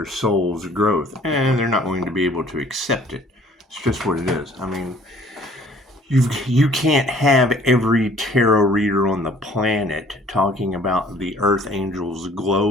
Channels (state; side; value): normal; both; correlation 0.55